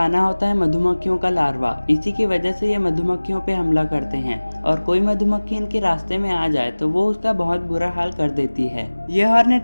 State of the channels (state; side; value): inverted; both; correlation -1.00